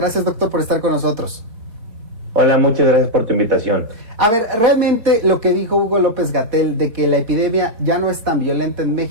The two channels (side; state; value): left; late; 4.2 ms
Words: doctor, por estar con nosotros. Hola, muchas gracias por tu invitación. A ver, realmente lo que dijo Hugo López-Gatell de que la epidemia ya no es tan violenta en